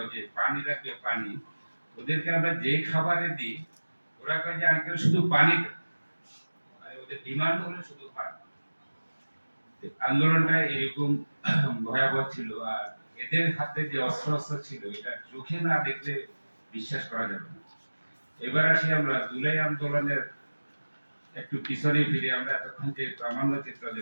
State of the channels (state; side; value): inverted; both; correlation -1.00